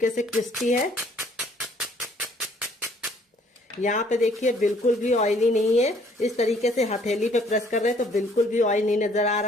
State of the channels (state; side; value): normal; both; correlation 0.61